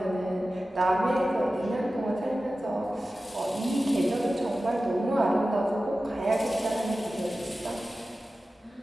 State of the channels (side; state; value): both; normal; correlation 0.95